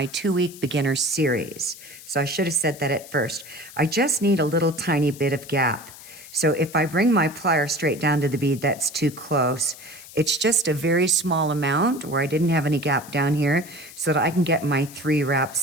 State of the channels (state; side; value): noise; left; hiss, 17 dB below the sound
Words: 2-week beginner series. So I should have said that at first. I just need a little tiny bit of gap. So if I bring my plier straight down to the bead, that's too close. It's just a very small amount where I didn't have any gap down here so that I can get my 3